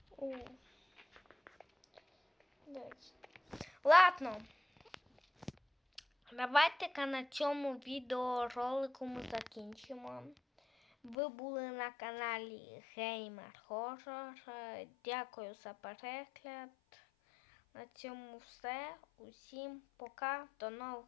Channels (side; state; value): right; drops out; at 11.2 s